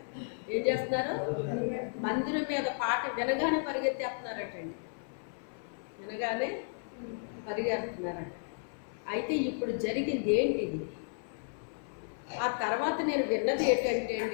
ఏం చేస్తున్నారు? మందిరం మీద పాట వినగానే పరిగెత్తేస్తున్నారటండి. వినగానే పరిగెడుతున్నారట. అయితే ఇప్పుడు జరిగింది ఏంటిది? ఆ తర్వాత నేను విన్నది ఏంటంటే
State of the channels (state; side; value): silent; right; 55 dB below the other